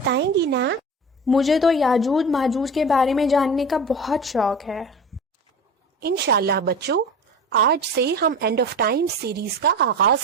گی نا؟ مجھے تو یاجوج ماجوج کے بارے میں جاننے کا بہت شوق ہے۔ انشاءاللہ بچوں، آج سے ہم اینڈ آف ٹائم سیریز کا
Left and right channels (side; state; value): both; normal; correlation 0.32